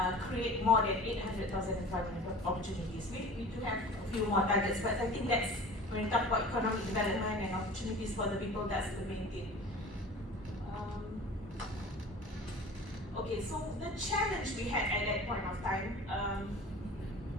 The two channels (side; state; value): both; normal; correlation 0.40